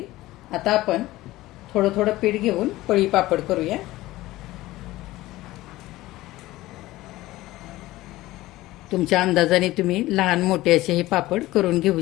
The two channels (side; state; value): right; quieter; 17.5 dB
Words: आता आपण थोडं थोडं पीठ घेऊन पळी पापड करूया. तुमच्या अंदाजाने तुम्ही लहान मोठे असे हे पापड करून